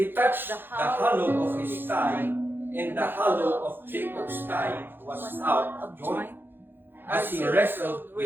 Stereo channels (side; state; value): left; late; 0.099 ms